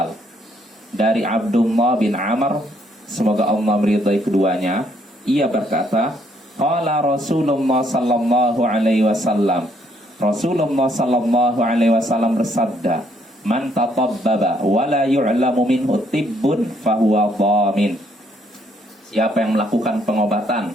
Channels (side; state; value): both; normal; correlation 0.69